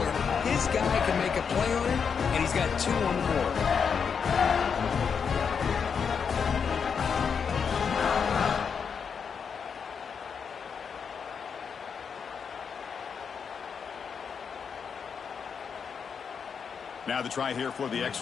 his guy can make a play on it, and he's got 2 on the board. Now the try here for the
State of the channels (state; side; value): quieter; right; 6.4 dB